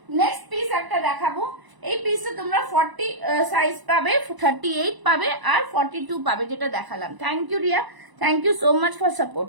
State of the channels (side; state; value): left; late; 1.0 ms